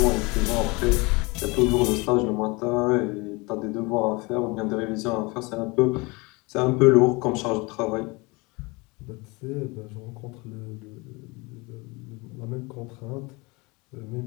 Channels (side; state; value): right; quieter; 26.1 dB